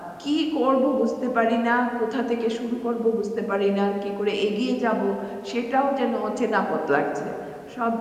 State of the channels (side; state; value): both; identical; correlation 1.00